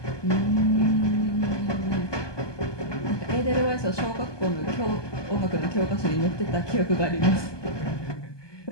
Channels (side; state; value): right; late; 1.2 ms